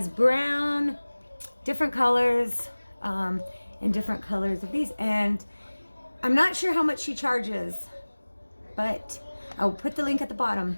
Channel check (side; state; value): both; inverted; correlation -1.00